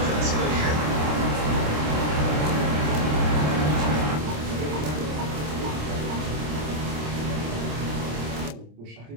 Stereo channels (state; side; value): late; left; 26 ms